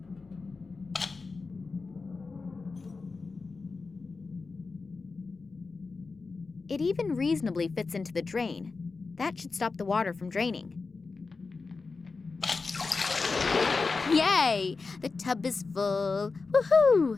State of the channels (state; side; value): quieter; right; 4.2 dB